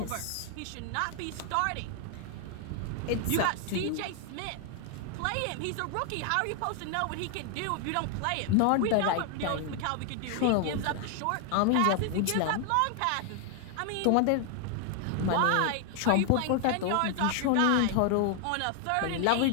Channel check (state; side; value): different; both; correlation 0.00